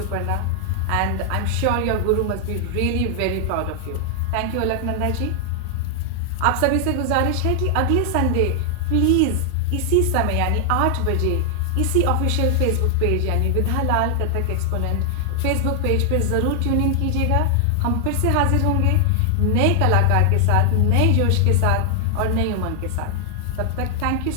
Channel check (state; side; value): different; both; correlation 0.00